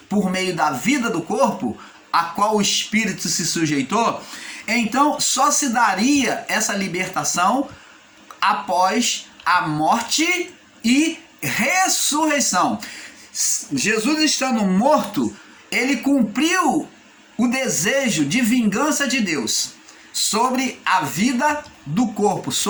por meio da vida do corpo, a qual o espírito se sujeitou, então só se daria essa libertação após a morte e ressurreição. Jesus estando morto, ele cumpriu o desejo de vingança de Deus sobre a vida do corpo,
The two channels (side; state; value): both; identical; correlation 1.00